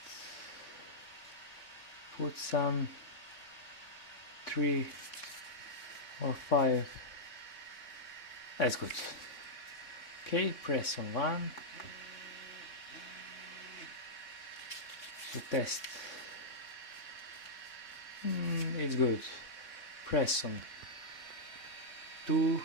put some 3 or 5. That's good. Okay, press on 1 to test. It's good. Press on 2.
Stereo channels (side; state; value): right; late; 3.6 ms